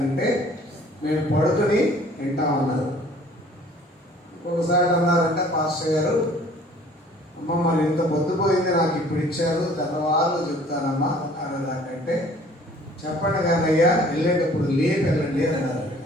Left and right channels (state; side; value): normal; both; correlation 0.53